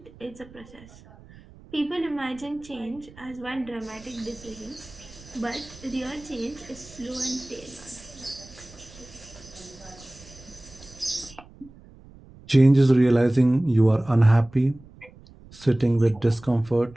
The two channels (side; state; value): right; noise; rumble, 22 dB below the sound